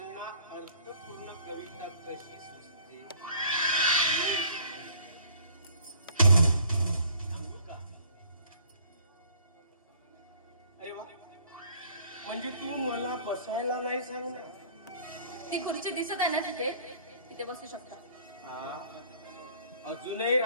अर्थपूर्ण कविता कशी सुचते सांगू का? अरे वा, म्हणजे तू मला बसायला नाही सांगणार? ती खुर्ची दिसत आहे ना तिथे, तिथे बसू शकता. हा, अजूनही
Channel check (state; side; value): inverted; both; correlation -0.55